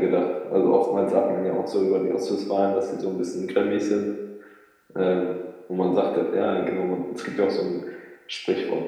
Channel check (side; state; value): both; identical; correlation 1.00